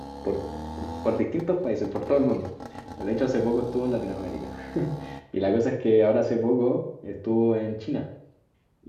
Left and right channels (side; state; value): both; identical; correlation 1.00